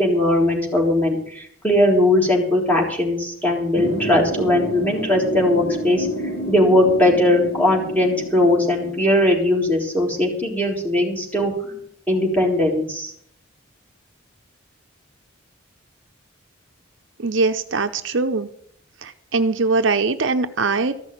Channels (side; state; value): both; normal; correlation 0.45